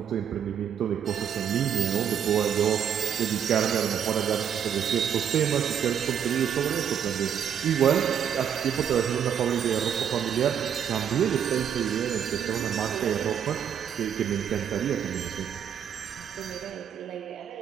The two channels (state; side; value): quieter; left; 8.5 dB